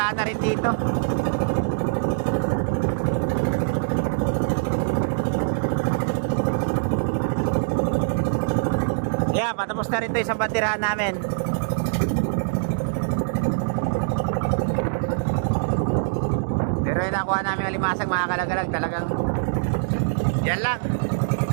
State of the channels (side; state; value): left; silent; digital silence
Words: na rin dito. Yeah, patapos na rin to isang bandirahan namin. Pero yung nakuha namin alimasag mga kalagalag, talagang yan lang.